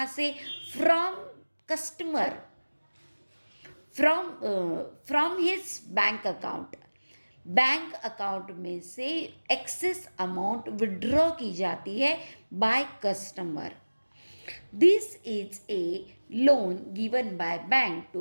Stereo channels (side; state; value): both; inverted; correlation -1.00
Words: से, from customer, from his bank account. Bank account में से एक्सेस अमाउंट विड्रॉ की जाती है by customer. This is a loan given by bank